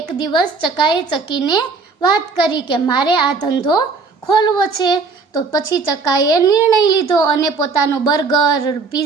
દિવસ ચકાએ ચકીને વાત કરી કે મારે આ ધંધો ખોલવો છે. તો પછી ચકાએ નિર્ણય લીધો અને પોતાનો બર્ગર,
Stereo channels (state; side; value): quieter; left; 4.4 dB